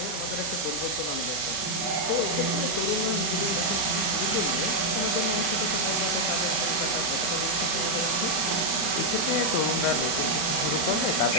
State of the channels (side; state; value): right; late; 40 ms